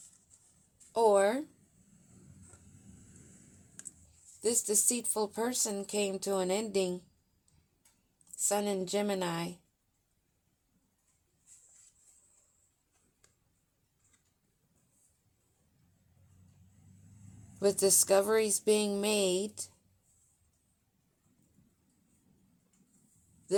Or this deceitful person came to an ending, Sun in Gemini, with discoveries being made,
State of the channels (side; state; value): both; identical; correlation 1.00